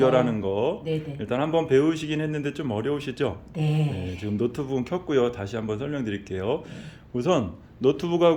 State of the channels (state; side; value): identical; both; correlation 1.00